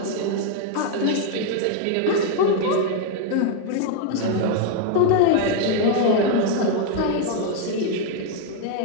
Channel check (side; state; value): both; different; correlation 0.01